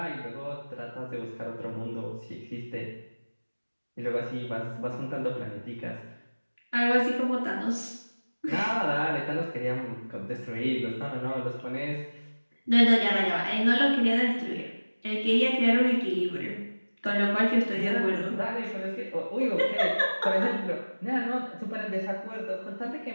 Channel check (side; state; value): both; inverted; correlation -1.00